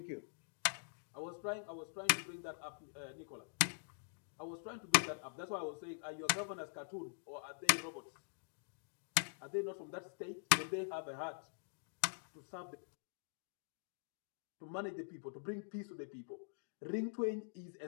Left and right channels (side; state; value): right; silent; digital silence